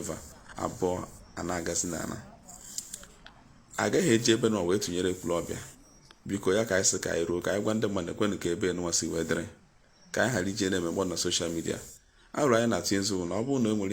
abụọ a na-agazi n'ala. Agaghị eji ebe nwa wee tụnyere Ekwulobia. Biko ya ka anyị sị ka anyị ruo ka anyị gwa ndị mmadụ ekwenụ ka ebe nwa si wee dịrị ka anyị ghara ije na-emegbo na soshal midia. Arụrụ anyị na-atụ nzu na ọ bụrụ na e nwere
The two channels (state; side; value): identical; both; correlation 1.00